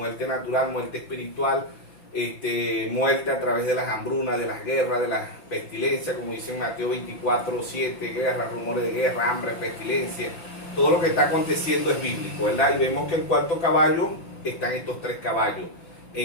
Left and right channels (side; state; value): right; late; 5.8 ms